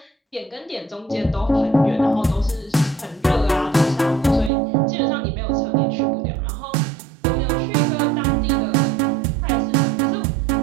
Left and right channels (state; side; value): drops out; left; at 4.5 s